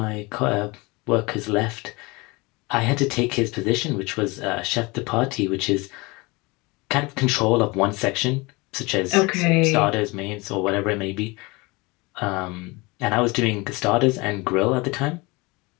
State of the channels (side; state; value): right; quieter; 25.0 dB